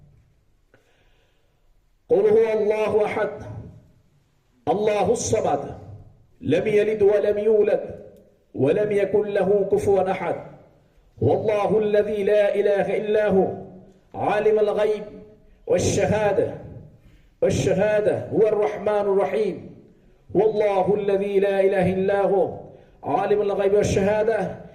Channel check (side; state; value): both; identical; correlation 1.00